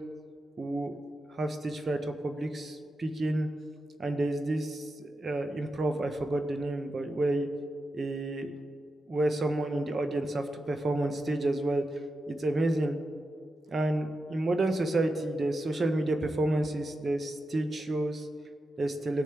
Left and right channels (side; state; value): both; normal; correlation 0.89